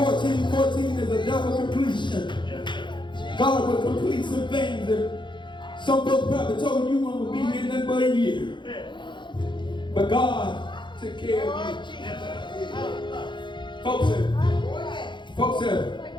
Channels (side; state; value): right; late; 0.23 ms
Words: 14 is a double completion. God will complete some things that some folks probably told you one would be here nothing but a year. But God took care of you. Folks